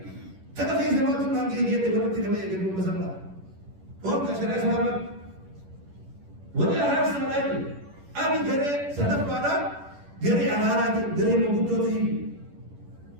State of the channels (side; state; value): left; late; 11 ms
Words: تنا في زمان تنا كي جه تقول تنا ما يجا بسمنا और कशरे सलामत वही आहार समाजी अभी घरे सदफ वाला घरे आहार आते घरे में गुड्डो थी